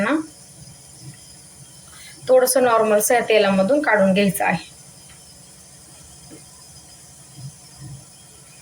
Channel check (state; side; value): identical; both; correlation 1.00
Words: थोडंसं नॉर्मलचं या तेलामधून काढून घ्यायचं आहे.